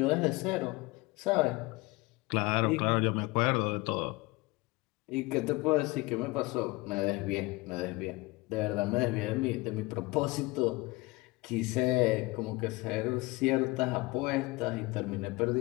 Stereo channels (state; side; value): quieter; right; 23.0 dB